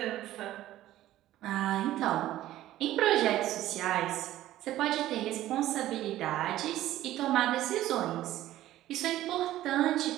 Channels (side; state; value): left; quieter; 14.3 dB